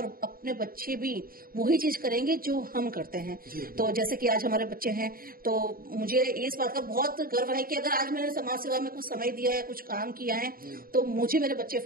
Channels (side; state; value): left; late; 0.42 ms